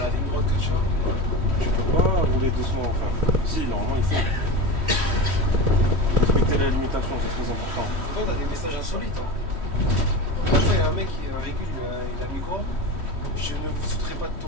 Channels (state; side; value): late; left; 3.1 ms